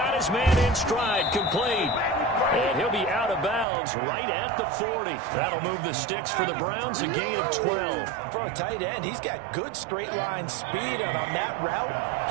his man in stride, complete. And he'll be out of bounds yards right at the 40. That'll move the sticks for the Browns, a gain of 12. For a tight end, he's got good straight line speed, and on that route,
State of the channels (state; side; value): drops out; left; at 3.7 s